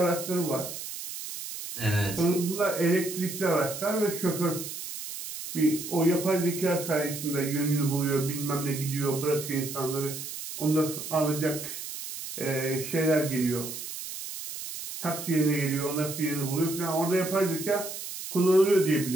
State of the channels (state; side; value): noise; right; hiss, 8 dB below the sound